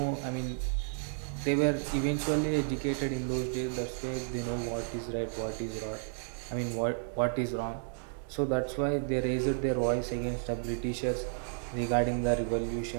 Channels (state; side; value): silent; left; 56 dB below the other